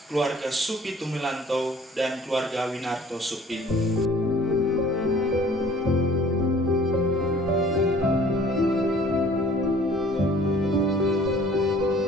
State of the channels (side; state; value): both; normal; correlation 0.52